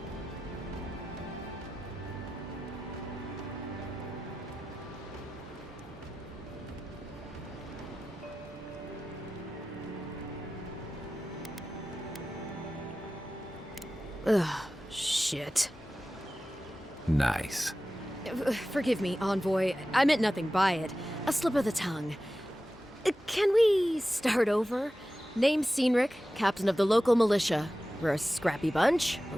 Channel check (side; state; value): both; normal; correlation 0.94